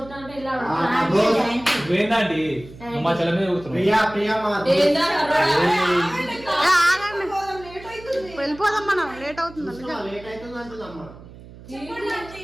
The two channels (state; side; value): noise; right; hum, 18 dB below the sound